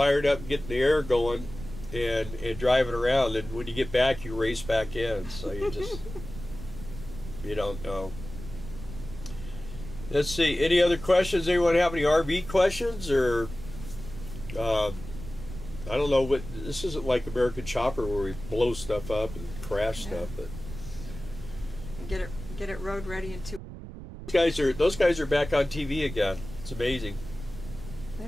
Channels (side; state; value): right; noise; rumble, 12 dB below the sound